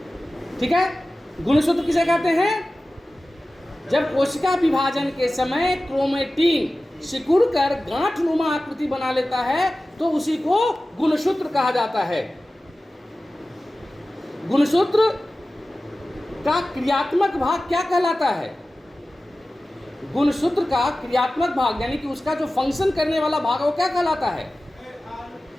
ठीक है, गुणसूत्र किसे कहते हैं? जब कोशिका विभाजन के समय क्रोमेटीन सिकुड़ कर गांठनुमा आकृति बना लेता है तो उसी को गुणसूत्र कहा जाता है। गुणसूत्र का क्रियात्मक भाग क्या कहलाता है? गुणसूत्र का क्रियात्मक भाग यानी कि उसका जो फंक्शन करने वाला भाग है वो क्या कहलाता है?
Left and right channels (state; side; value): normal; both; correlation 0.96